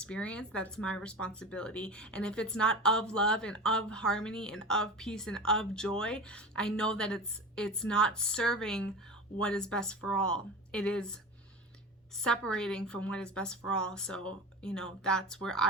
that's my responsibility. And if it's not of love and of harmony and of peace and of joy, I know that it's not serving what is best for all. It is separating from what is best for all. So, that's where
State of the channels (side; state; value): both; normal; correlation 0.30